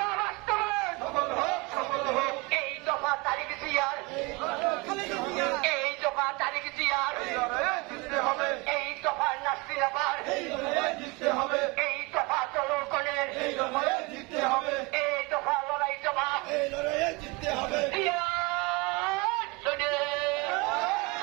বাস্তবায়ন, এই দফা তারিখ জিয়ার, এই দফা তারিখ জিয়ার, এই দফার নাসিরাবার, এই দফা জনগণের, এই দফা লড়াই জমা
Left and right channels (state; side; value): quieter; left; 26.3 dB